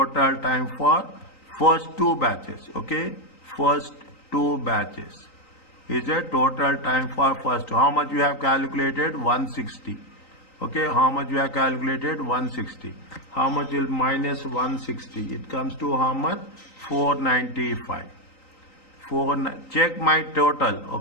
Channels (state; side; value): late; right; 3.9 ms